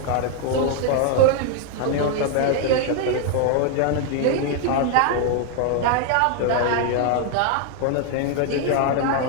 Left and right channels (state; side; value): different; both; correlation 0.00